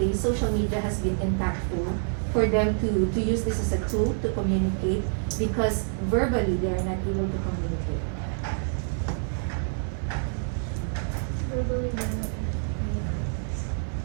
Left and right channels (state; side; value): silent; left; digital silence